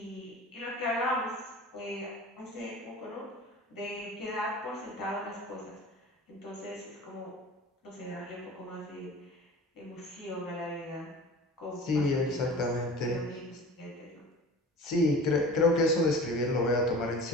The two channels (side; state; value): both; normal; correlation 0.39